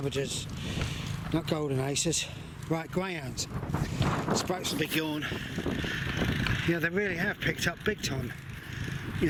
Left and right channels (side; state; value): both; identical; correlation 1.00